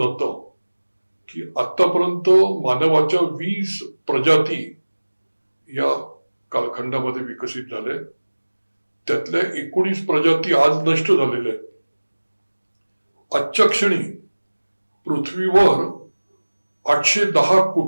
की आतापर्यंत मानवाच्या 20 प्रजाती या कालखंडामध्ये विकसित झाले. त्यातल्या 19 प्रजाती आज नष्ट झालेल्या आहेत. आजच्या क्षणी पृथ्वीवर 810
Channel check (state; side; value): inverted; both; correlation -1.00